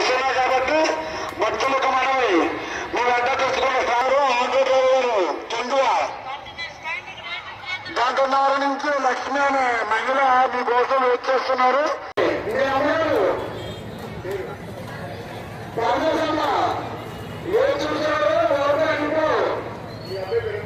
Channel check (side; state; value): both; identical; correlation 1.00